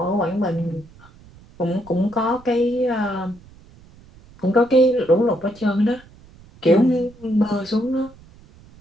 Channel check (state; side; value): noise; right; rumble, 24 dB below the sound